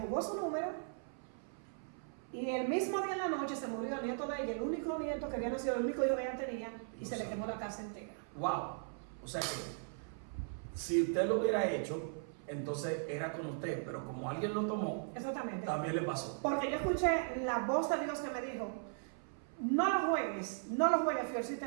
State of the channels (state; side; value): silent; left; 52 dB below the other